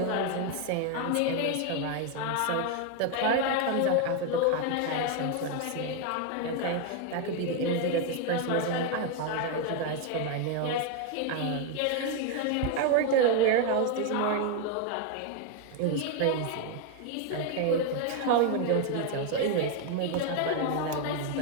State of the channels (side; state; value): both; different; correlation 0.01